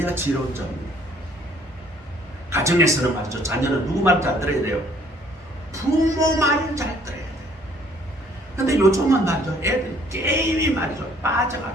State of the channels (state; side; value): normal; both; correlation 0.60